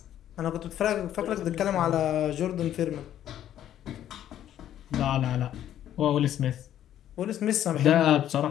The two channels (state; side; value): quieter; right; 11.3 dB